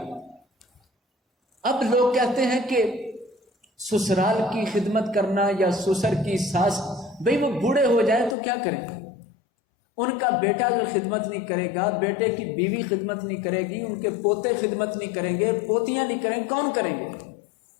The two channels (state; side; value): drops out; right; at 8.3 s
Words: اب لوگ کہتے ہیں کہ سسرال کی خدمت کرنا یا سسر کی ساس، بھئی وہ بوڑھے ہو جائیں تو کیا کریں؟ ان کا بیٹا جو خدمت نہیں کرے گا، بیٹے کی بیوی خدمت نہیں کرے گی، ان کے پوتے خدمت نہیں کریں گے، پوتیاں نہیں کریں گے، کون کریں گے؟